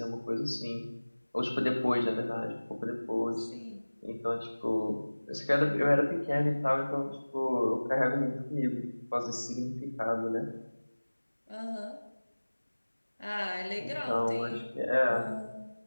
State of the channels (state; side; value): inverted; both; correlation -1.00